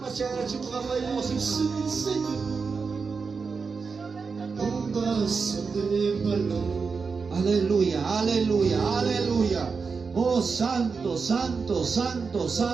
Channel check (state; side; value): quieter; left; 5.1 dB